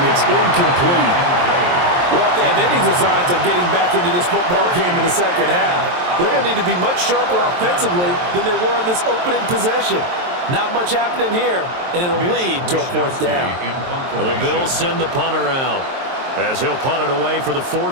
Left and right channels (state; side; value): late; left; 23 ms